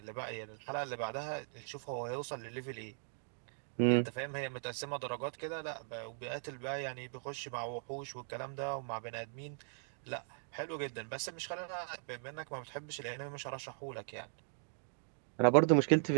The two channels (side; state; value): left; silent; digital silence